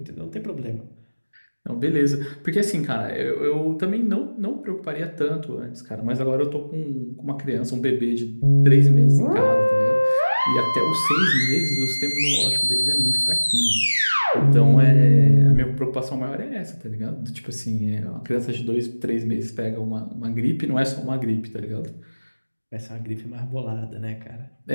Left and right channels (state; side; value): inverted; both; correlation -1.00